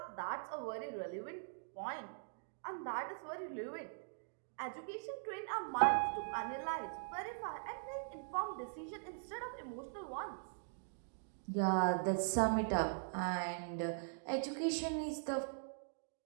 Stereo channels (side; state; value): left; silent; digital silence